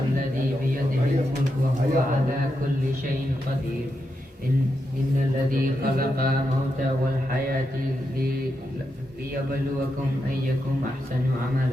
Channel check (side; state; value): both; normal; correlation 0.85